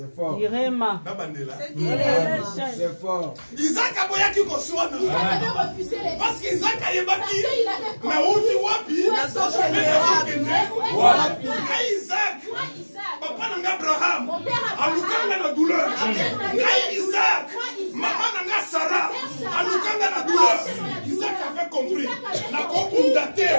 fort. Irema. C'est fort. Isaac a boyaki koswana. Isaac avait refusé les parce qu'Isaac a yebaki. il avait compris. Na uti wapi? Wapi. Isaac. Papa nanga Abraham. Mon père Alukanga na douleur. Isaac. Maman nanga Sarah. Alukanga na douleur. Isaac avait compris. Na ko undate.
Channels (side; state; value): both; inverted; correlation -1.00